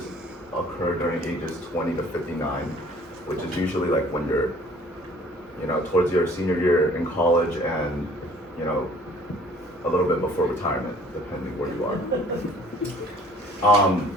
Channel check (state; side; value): normal; both; correlation 0.54